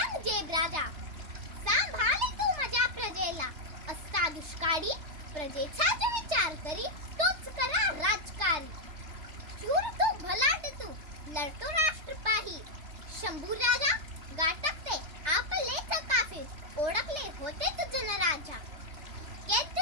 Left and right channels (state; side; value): late; left; 3.3 ms